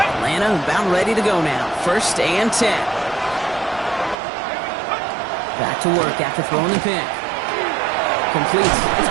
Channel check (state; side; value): drops out; left; at 4.2 s